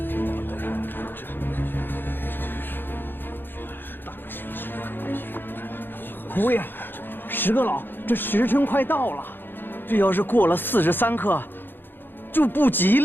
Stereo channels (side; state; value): right; late; 0.097 ms